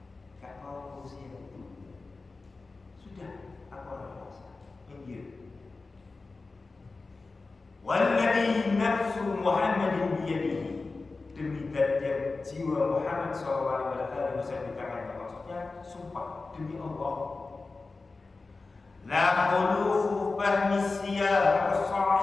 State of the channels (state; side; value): quieter; right; 3.8 dB